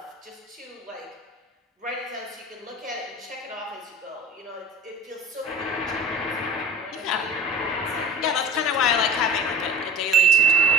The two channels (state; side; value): normal; both; correlation 0.38